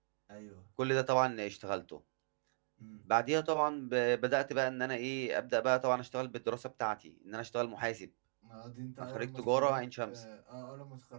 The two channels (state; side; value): silent; left; digital silence